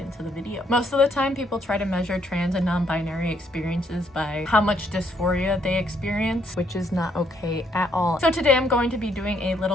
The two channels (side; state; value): both; normal; correlation 0.71